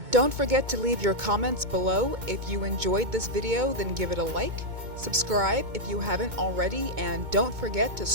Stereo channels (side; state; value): left; late; 2.2 ms